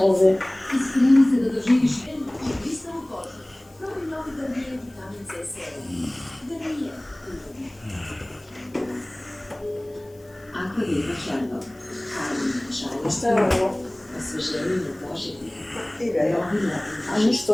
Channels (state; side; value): noise; left; hiss, 30 dB below the sound